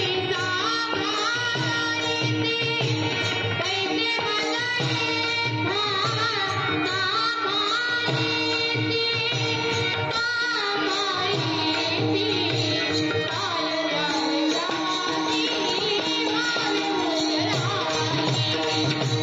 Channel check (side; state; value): both; identical; correlation 1.00